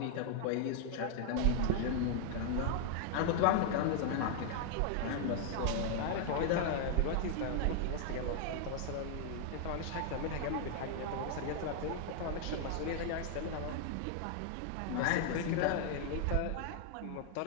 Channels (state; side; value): different; both; correlation 0.00